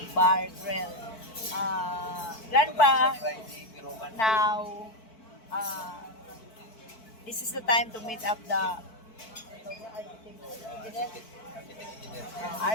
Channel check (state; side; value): late; right; 4.5 ms